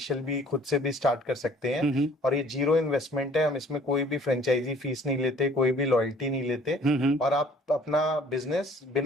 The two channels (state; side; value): normal; both; correlation 0.55